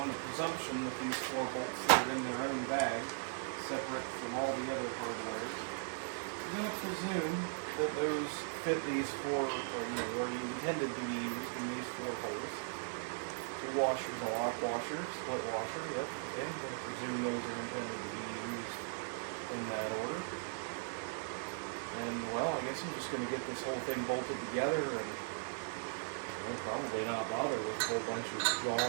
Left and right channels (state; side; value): silent; left; digital silence